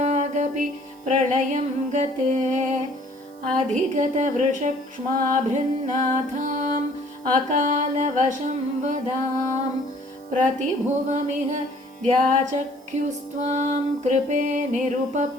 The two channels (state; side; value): noise; right; hiss, 29 dB below the sound